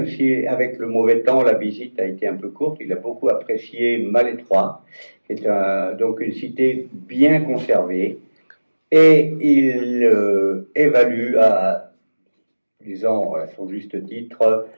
si avec le mauvais temps, la visite a été un peu courte, il a beaucoup apprécié Malétroit, qui est donc une cité bien conservée, et il évalue disons à son juste titre,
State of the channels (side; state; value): both; inverted; correlation -1.00